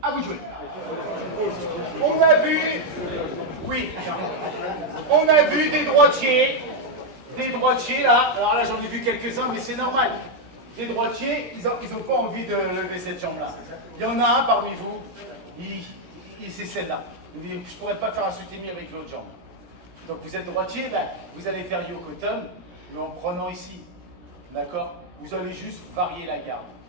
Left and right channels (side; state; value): left; late; 16 ms